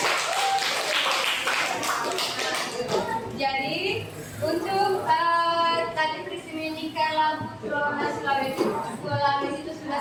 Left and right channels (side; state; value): both; identical; correlation 1.00